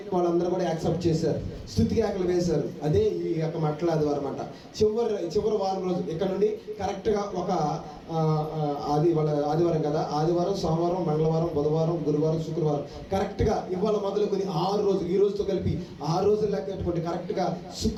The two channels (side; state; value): both; identical; correlation 1.00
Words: వాళ్ళందరూ కూడా యాక్సెప్ట్ చేశారు, స్తుతి కేకలు వేశారు. అదే ఈ యొక్క మట్ల ఆదివారం అన్నమాట. చివరి వారం రోజు ఇక్కడ నుండి కరెక్ట్గా ఒక ఆదివారం కదా, ఆదివారం, సోమవారం, మంగళవారం, బుధవారం, గురువారం, శుక్రవారం, కరెక్ట్గా ఇవాళ మొదలుకొని 6 రోజులు, ఈ రోజుతో కలిపి 6 రోజులు లెక్క పెట్టుకుంటే కరెక్ట్గా